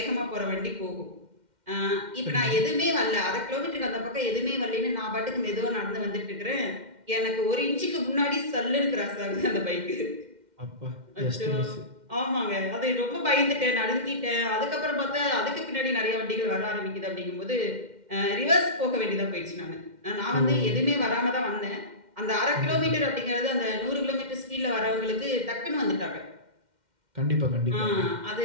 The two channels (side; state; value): left; late; 2.1 ms